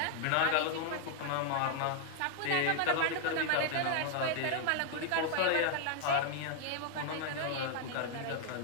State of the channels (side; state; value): both; different; correlation 0.00